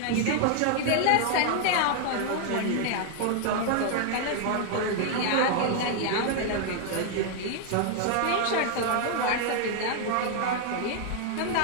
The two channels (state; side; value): different; both; correlation 0.00